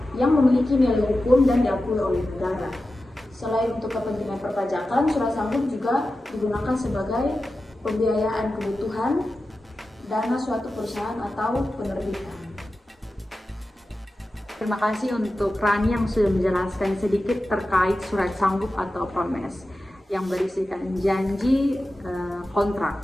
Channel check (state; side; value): normal; both; correlation 0.93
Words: yang memiliki nilai hukum dan diakui oleh negara. Selain untuk kepentingan perpajakan, surat sanggup juga digunakan sebagai pembiayaan kebutuhan dana suatu perusahaan atau penerbitan. Terima kasih untuk Rani yang sudah menjelaskan sedikit terkait surat sanggup atau promise yang berisikan janji kontrak